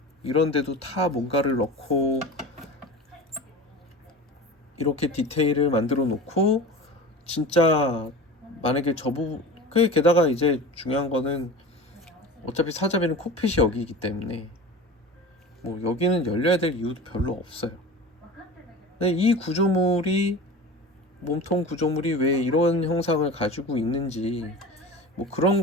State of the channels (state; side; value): normal; both; correlation 0.34